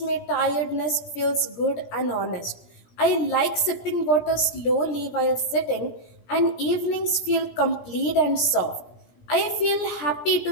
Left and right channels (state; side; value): late; right; 17 ms